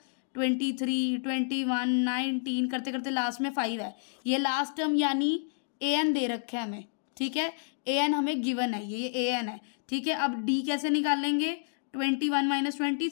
23, 21, 19 करते करते लास्ट में 5 है। ये लास्ट टर्म यानी an दे रखा है हमें। ठीक है, an हमें गिवन है, ये an है। ठीक है, अब d कैसे निकालेंगे, 21 माइनस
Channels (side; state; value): right; silent; digital silence